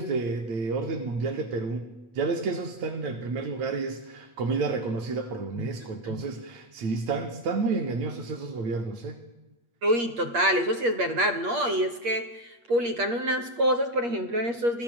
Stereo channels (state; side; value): late; left; 8.5 ms